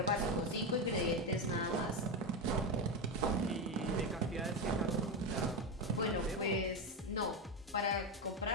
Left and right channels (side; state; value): both; normal; correlation 0.13